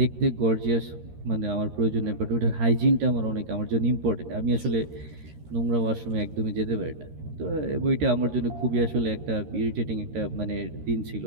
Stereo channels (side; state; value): left; late; 13 ms